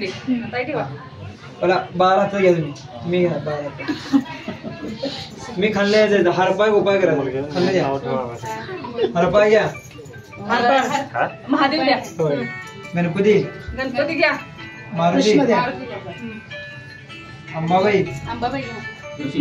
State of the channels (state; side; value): identical; both; correlation 1.00